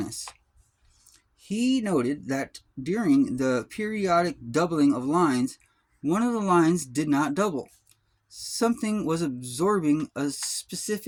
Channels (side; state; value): both; identical; correlation 1.00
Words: He noted that during the periodic doubling of lines, one of the lines did not double. Something was absorbing a